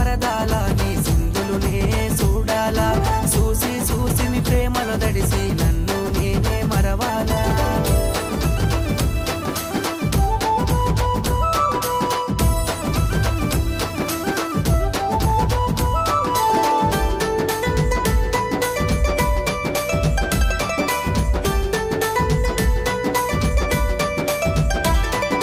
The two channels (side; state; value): both; identical; correlation 1.00